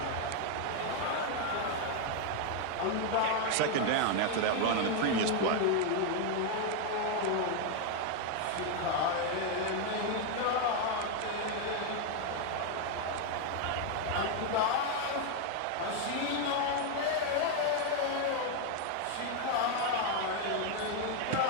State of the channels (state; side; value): different; both; correlation 0.01